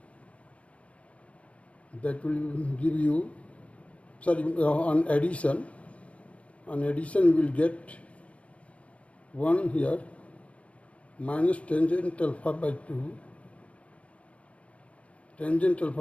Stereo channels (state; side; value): late; right; 0.063 ms